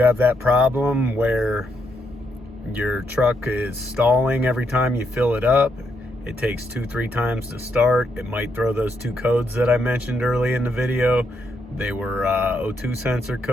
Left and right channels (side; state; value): both; normal; correlation 0.78